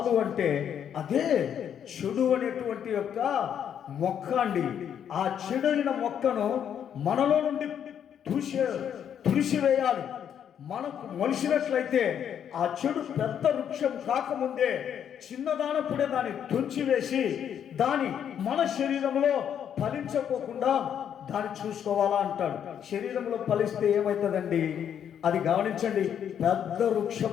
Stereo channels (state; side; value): quieter; right; 8.9 dB